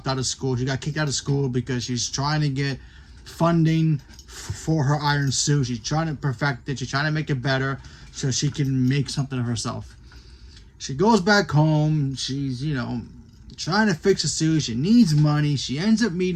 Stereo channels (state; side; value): identical; both; correlation 1.00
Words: out of school. She got kicked out of school because she's trying to get funding for her iron suit. She's trying to perfect it. She's trying to make it better so she can make something of herself. She goes back home. She's, trying to fix a suit. She needs money. She ends up